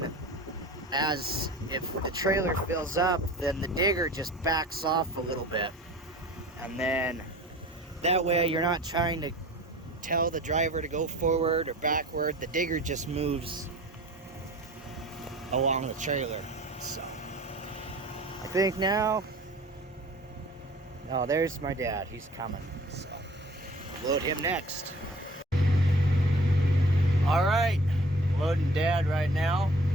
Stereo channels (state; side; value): normal; both; correlation 0.45